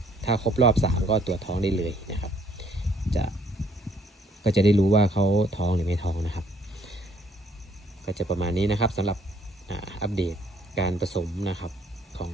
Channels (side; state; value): both; normal; correlation 0.64